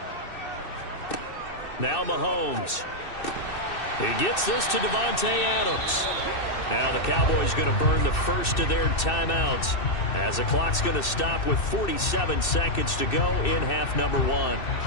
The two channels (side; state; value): right; late; 2.6 ms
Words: Now Mahomes. He gets this to Davante Adams. Now the Cowboys going to burn the first of their timeouts as the clock's going to stop with 47 seconds to go in half number 1.